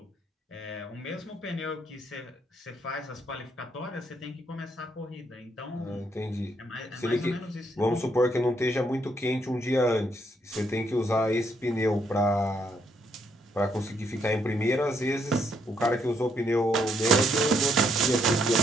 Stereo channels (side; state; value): both; normal; correlation 0.73